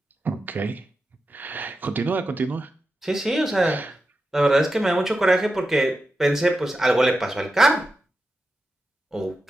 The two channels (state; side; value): normal; both; correlation 0.90